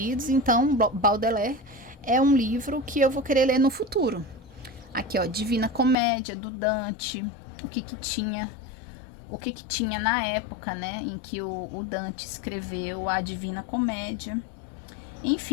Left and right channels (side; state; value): right; drops out; at 6.0 s